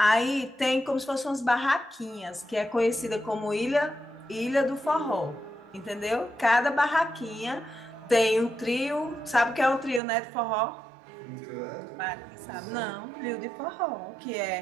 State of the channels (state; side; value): drops out; left; at 10.0 s